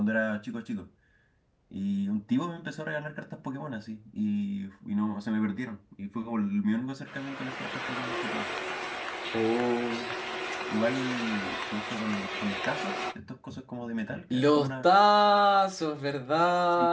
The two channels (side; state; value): both; identical; correlation 1.00